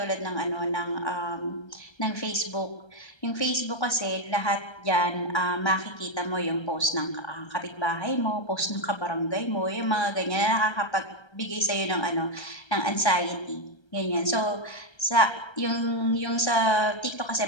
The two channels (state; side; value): late; right; 1.3 ms